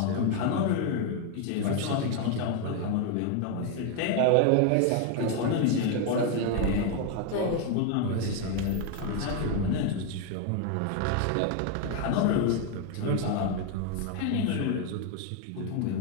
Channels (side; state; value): both; different; correlation 0.01